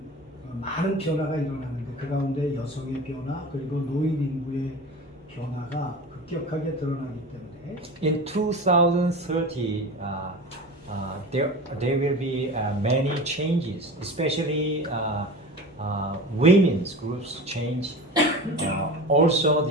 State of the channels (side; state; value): both; normal; correlation 0.32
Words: 많은 변화가 일어나는데 그 가운데 여성의 변화 그리고 노인 인구의 변화가 급격하게 드러나기 때문에 In 2030, there will be many changes, especially women's groups change. Also,